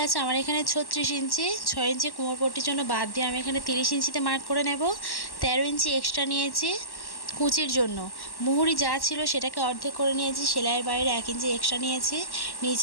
আছে আমার এখানে 36 ইঞ্চি, 6 ইঞ্চি কোমরপট্টির জন্য বাদ দিয়ে আমি এখানে 30 ইঞ্চিতে মার্ক করে নেব। 13 ইঞ্চি এক্সট্রা নিয়েছি কুচির জন্য। মুহুরি যা ছিল সেটাকে অর্ধেক করে নিয়েছি, সেলাইয়ের বাইরে 1 ইঞ্চি এক্সট্রা নিয়েছি,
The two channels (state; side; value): late; right; 1.1 ms